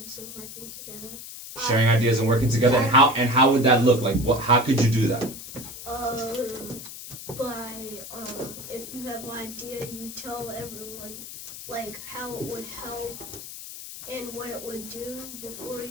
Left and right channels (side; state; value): left; noise; hiss, 12 dB below the sound